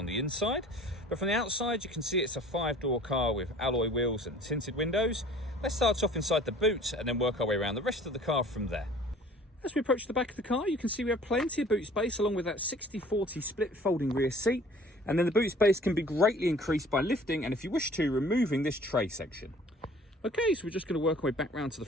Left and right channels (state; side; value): normal; both; correlation 0.50